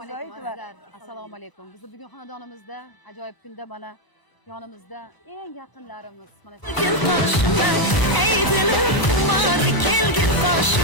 Assalomu alaykum. Biz bugun xonadonimizda ajoyib kunda mana yonimizda eng yaqinlarimiz mana Kelgin qoshimda, ey dilim xumor, kelgin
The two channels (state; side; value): late; right; 1.0 ms